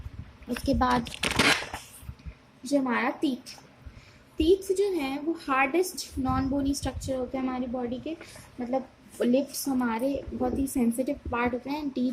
उसके बाद जो हमारा टीथ, टीथ जो है वो हार्डेस्ट नॉन बोनी स्ट्रक्चर होते हैं हमारी बॉडी के, मतलब लिप्स हमारे बहुत ही सेंसिटिव पार्ट होते हैं,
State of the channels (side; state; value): both; identical; correlation 1.00